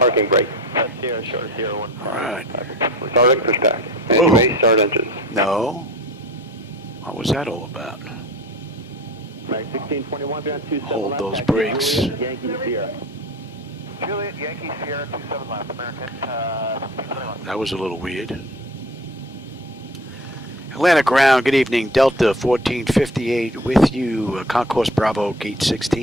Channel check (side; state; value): both; normal; correlation 0.40